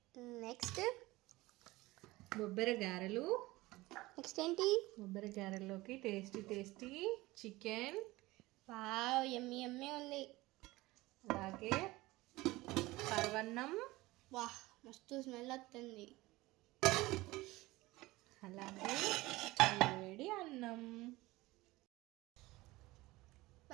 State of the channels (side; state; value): left; quieter; 19.8 dB